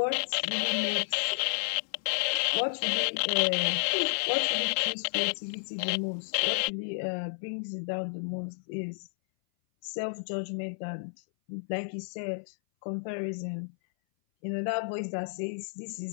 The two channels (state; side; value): silent; right; 57 dB below the other